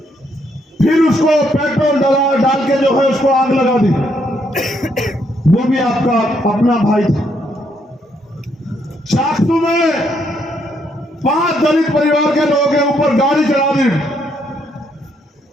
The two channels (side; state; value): both; normal; correlation 0.73